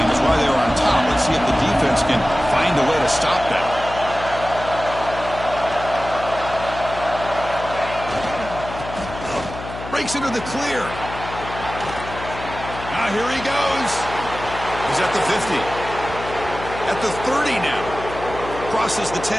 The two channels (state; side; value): noise; left; hum, 11 dB below the sound